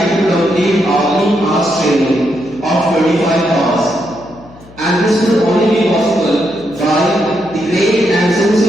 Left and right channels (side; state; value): left; noise; hum, 22 dB below the sound